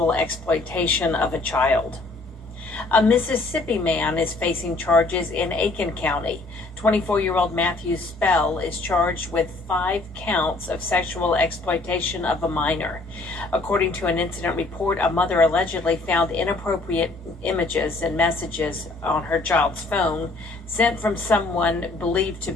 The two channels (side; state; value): right; quieter; 3.2 dB